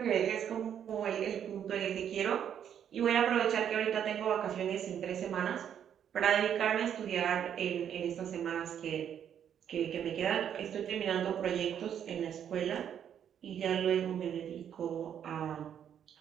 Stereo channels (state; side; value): quieter; left; 9.1 dB